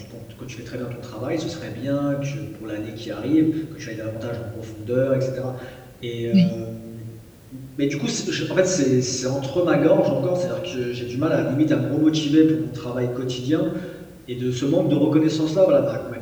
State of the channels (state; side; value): identical; both; correlation 1.00